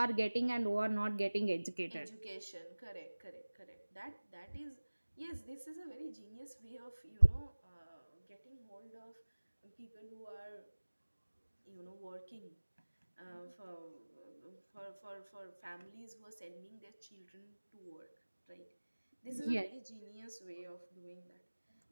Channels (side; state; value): both; inverted; correlation -1.00